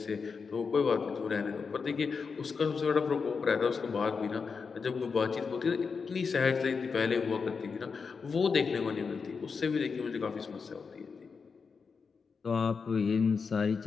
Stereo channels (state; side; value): quieter; right; 5.3 dB